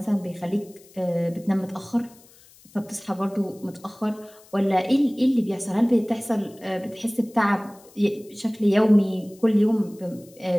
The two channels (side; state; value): left; noise; hiss, 26 dB below the sound